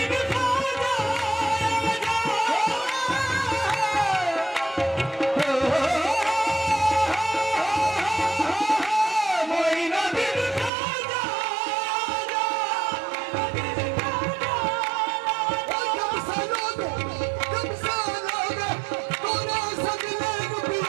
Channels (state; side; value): drops out; left; at 10.7 s